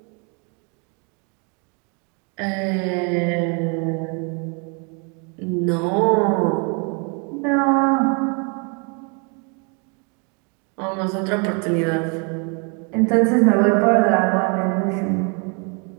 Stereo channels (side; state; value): left; quieter; 35.3 dB